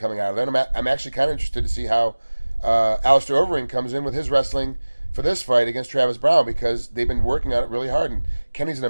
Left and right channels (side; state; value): both; inverted; correlation -1.00